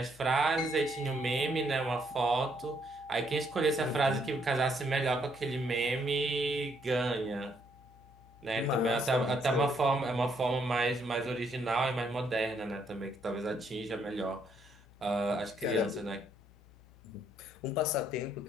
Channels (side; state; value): left; noise; hum, 24 dB below the sound